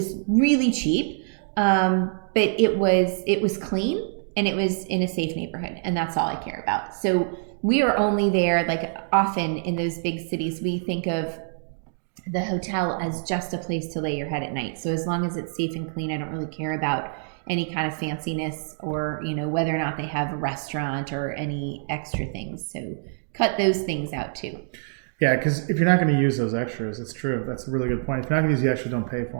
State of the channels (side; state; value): left; silent; digital silence